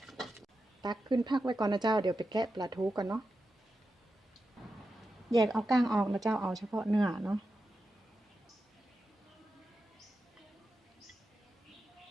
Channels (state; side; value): normal; both; correlation 0.90